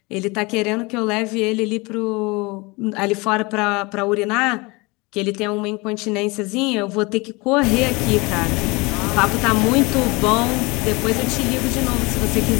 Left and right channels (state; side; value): quieter; right; 25.6 dB